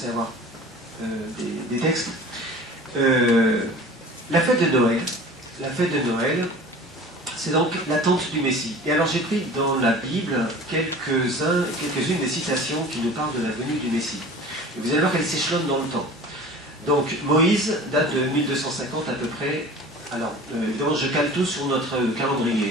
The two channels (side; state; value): both; normal; correlation 0.41